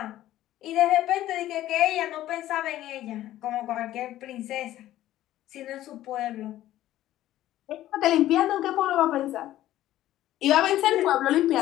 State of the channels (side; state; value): right; quieter; 13.9 dB